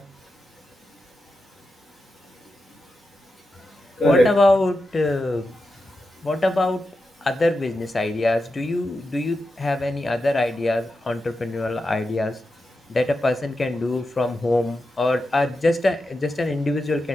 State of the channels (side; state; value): both; normal; correlation 0.89